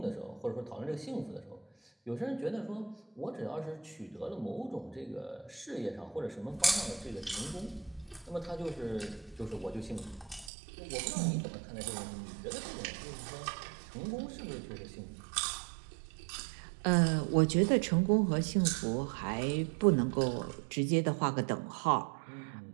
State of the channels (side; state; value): left; drops out; at 10.5 s